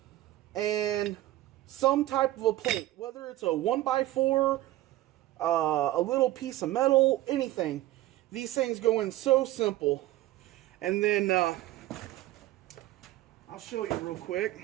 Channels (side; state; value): left; quieter; 16.0 dB